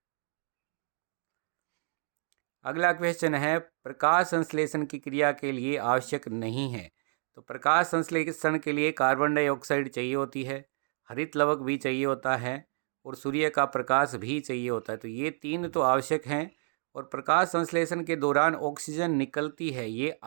अगला क्वेश्चन है, प्रकाश संश्लेषण की क्रिया के लिए आवश्यक नहीं है। तो प्रकाश संश्लेषण के लिए कार्बन डाइऑक्साइड चाहिए होती है, हरित लवक भी चाहिए होता है, और सूर्य का प्रकाश भी चाहिए होता है। तो ये 3 तो आवश्यक हैं। और प्रकाश संश्लेषण के दौरान ऑक्सीजन निकलती है, ये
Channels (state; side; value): silent; left; 58 dB below the other